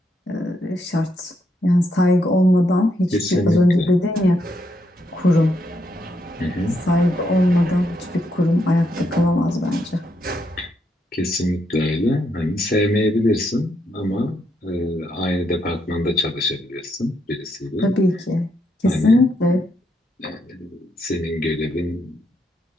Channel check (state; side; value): normal; both; correlation 0.77